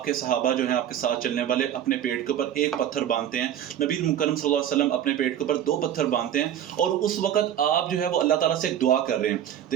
کے صحابہ جو ہیں، آپ کے ساتھ چلنے والے، اپنے پیٹ کے اوپر ایک پتھر باندھتے ہیں. نبی مکرم صلی اللہ علیہ وسلم اپنے پیٹ کے اوپر 2 پتھر باندھتے ہیں اور اس وقت آپ جو ہے وہ اللہ تعالیٰ سے ایک دعا کر رہے ہیں.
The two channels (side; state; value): left; quieter; 10.4 dB